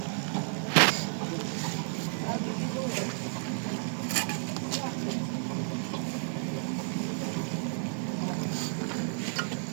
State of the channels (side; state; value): left; silent; 57 dB below the other